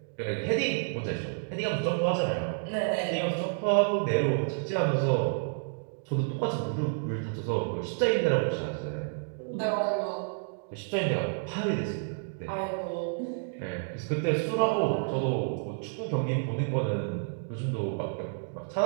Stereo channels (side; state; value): left; silent; digital silence